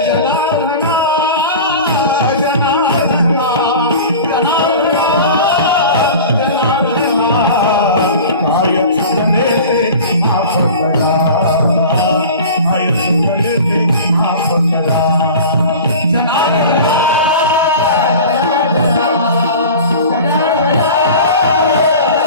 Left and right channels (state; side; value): inverted; both; correlation -0.36